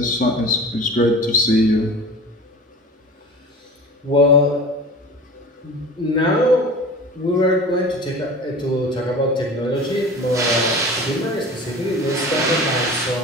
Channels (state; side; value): normal; both; correlation 0.37